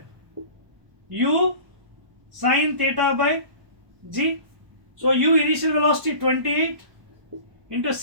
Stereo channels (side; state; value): left; late; 1.1 ms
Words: U sine theta by G. So U initial velocity 28 into